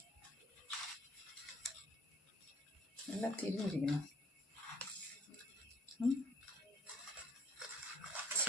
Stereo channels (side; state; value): both; normal; correlation 0.57